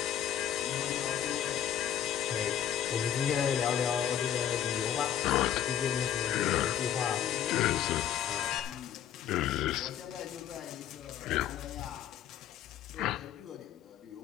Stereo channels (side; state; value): right; quieter; 10.2 dB